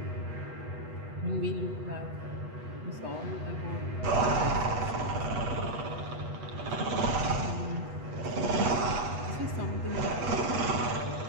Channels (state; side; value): late; left; 8.2 ms